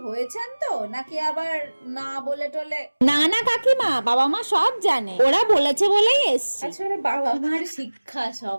হয়েছেন তো, নাকি আবার না বলে টলে? না না কাকিমা, বাবা মা সব জানে, ওরা বলেছে বলেই এসছে। আসলে বাবা মার শিক্ষা সব।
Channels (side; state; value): both; inverted; correlation -1.00